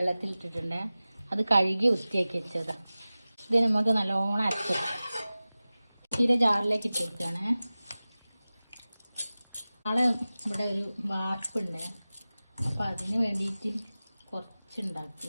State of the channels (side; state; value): both; inverted; correlation -0.97